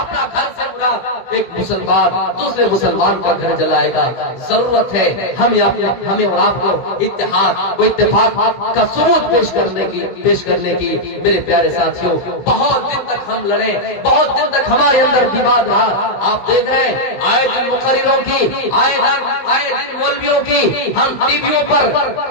گھر سے برا ایک مسلمان دوسرے مسلمان کا گھر جلائے گا. ضرورت ہے ہمیں اور آپ کو اتحاد و اتفاق کا ثبوت پیش کرنے کی. میرے پیارے ساتھیوں بہت دن تک ہم لڑے, بہت دن تک ہمارے اندر وواد رہا. آپ دیکھ رہے ہیں آئے دن مقرروں کی, آئے دن مولویوں کی, ہم ٹی ویوں پر,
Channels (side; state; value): right; late; 16 ms